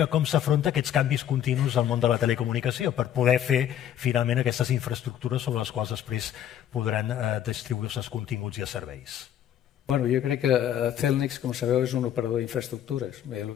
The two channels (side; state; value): right; quieter; 10.5 dB